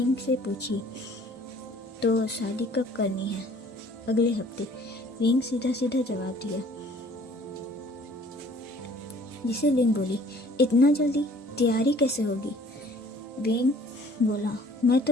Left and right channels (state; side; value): normal; both; correlation 0.55